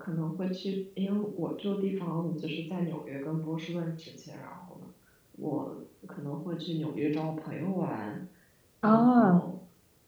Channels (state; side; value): identical; both; correlation 1.00